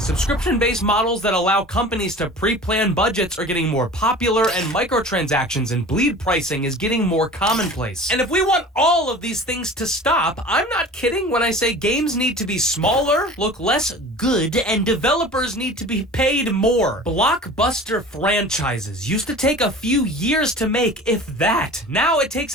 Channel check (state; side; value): normal; both; correlation 0.40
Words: models that allow companies to pre-plan budgets are getting more popular, and microtransactions and bleed pricing is getting more commonplace. And if we want all of these things to stop, I'm not kidding when I say games need to be smaller, look less good, and developers need to be paid more. Blockbuster franchises used to take a few years to make, if that. Now it takes